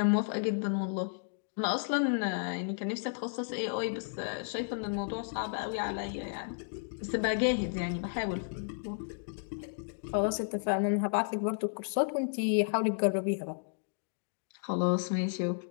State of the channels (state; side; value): silent; right; digital silence